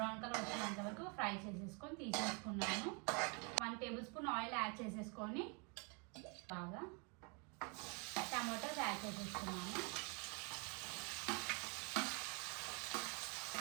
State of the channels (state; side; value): quieter; left; 34.1 dB